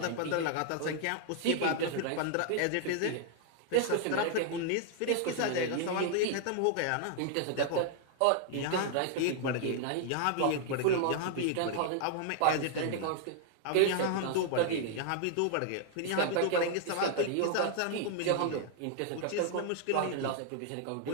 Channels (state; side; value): different; both; correlation 0.00